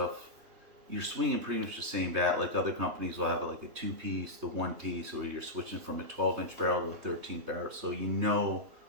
you're swinging pretty much the same bat. Like other companies will have like a 2-piece, the 1-piece, or you're switching from a 12-inch barrel to a 13 barrel. So you know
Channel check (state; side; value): late; left; 3.2 ms